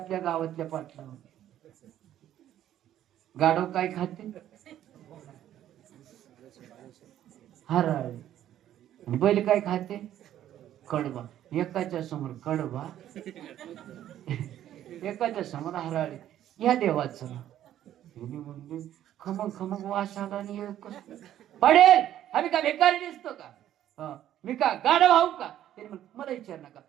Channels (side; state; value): left; quieter; 11.8 dB